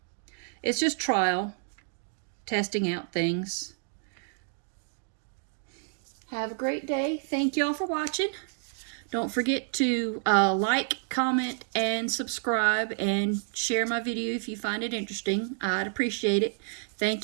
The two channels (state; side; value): silent; left; digital silence